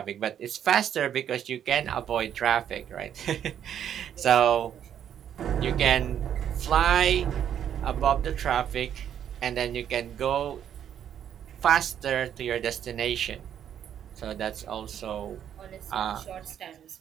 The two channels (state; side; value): quieter; left; 9.5 dB